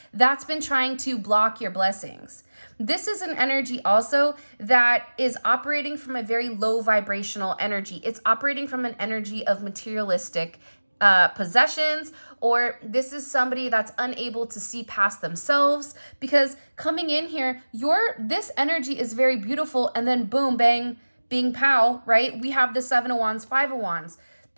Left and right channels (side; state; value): both; inverted; correlation -1.00